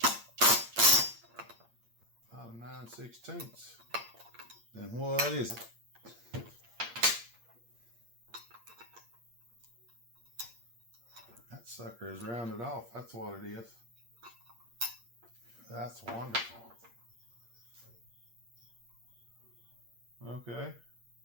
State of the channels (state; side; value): late; left; 8.6 ms